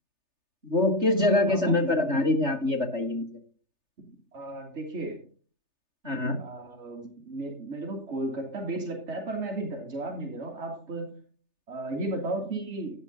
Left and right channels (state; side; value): late; left; 3.3 ms